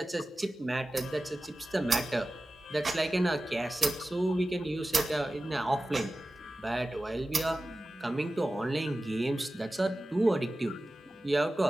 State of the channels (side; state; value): both; normal; correlation 0.95